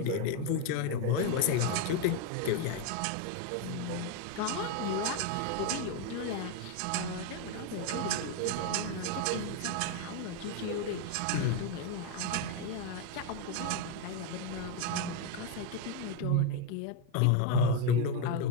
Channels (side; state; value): both; different; correlation 0.02